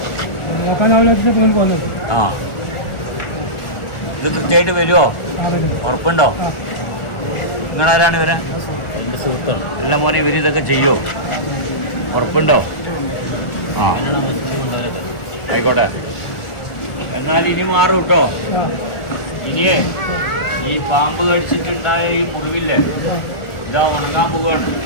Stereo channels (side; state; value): right; late; 1.4 ms